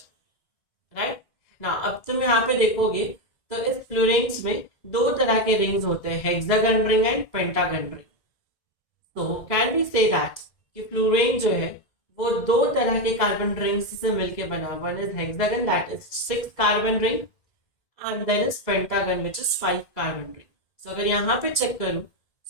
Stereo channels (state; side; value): late; right; 2.0 ms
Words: Right? Now अब तुम यहाँ पे देखोगे तो इस fluorines में दो तरह के rings होते हैं, hexagon ring and pentagon ring. So can we say that कि fluorine जो है वो दो तरह के कार्बन रिंग्स से मिलके बना. One is hexagon, that is 6 carbon ring, and then is pentagon which is 5 carbon ring. So अगर यहाँ पे चेक करूं